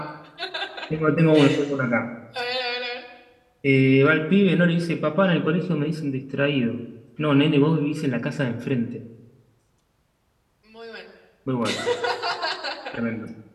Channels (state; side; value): identical; both; correlation 1.00